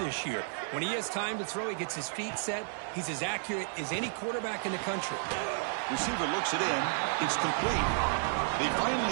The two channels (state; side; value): silent; left; 56 dB below the other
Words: year. When he has time to throw, he gets his feet set. He's as accurate as any quarterback in the country. Receiver looks it in. It's complete. They